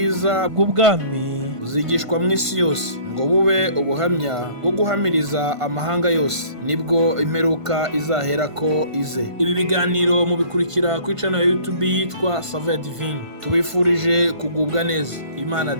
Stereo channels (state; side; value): late; left; 1.5 ms